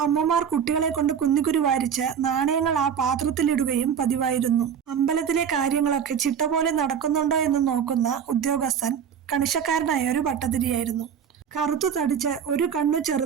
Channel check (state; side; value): quieter; left; 7.7 dB